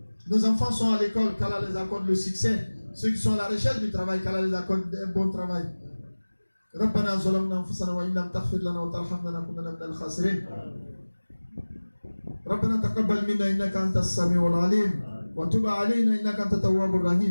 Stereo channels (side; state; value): both; inverted; correlation -1.00